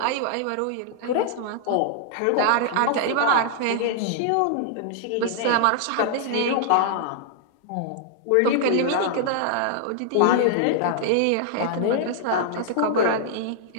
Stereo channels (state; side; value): different; both; correlation -0.01